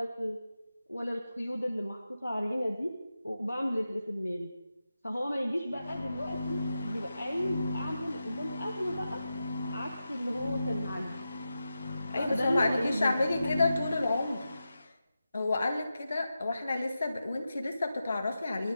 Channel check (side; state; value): both; inverted; correlation -0.91